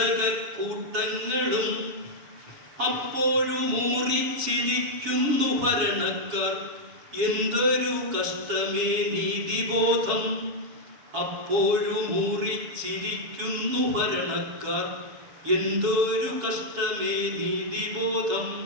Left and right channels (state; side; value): late; left; 7.3 ms